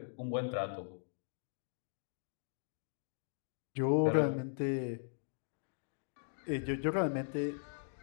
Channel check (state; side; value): silent; right; digital silence